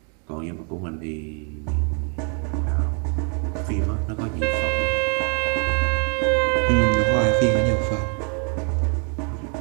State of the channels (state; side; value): quieter; left; 39.2 dB